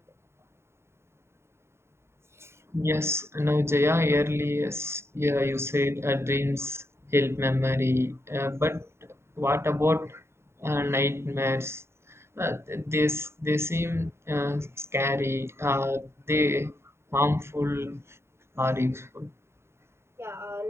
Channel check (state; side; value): late; left; 0.12 ms